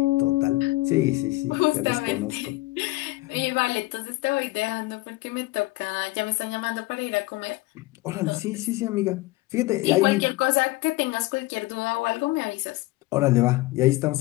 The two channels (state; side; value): quieter; right; 20.7 dB